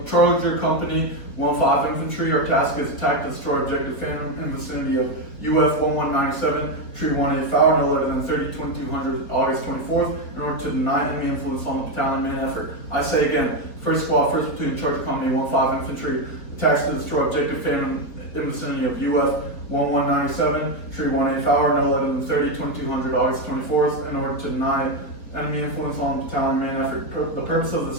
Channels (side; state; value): right; late; 4.4 ms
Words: Charger Company, 1-5 Infantry. Our task is attack and destroy Objective Phantom in the vicinity of UF 1197, Tree 18 Fowler, no later than 30-2200 August 24th, in order to deny enemy influence on the battalion main effort. I say again, 1st Squad, 1st Platoon, Charger Company, 1-5 Infantry, attacks to destroy Objective Phantom in the vicinity of UF 1197, Tree 18 Fowler, no later than 30-2200 August 24th, in order to deny enemy influence on the battalion main effort. The purpose of